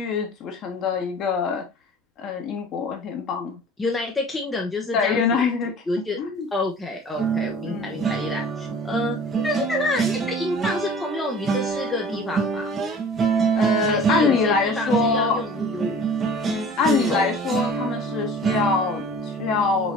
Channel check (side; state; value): both; normal; correlation 0.44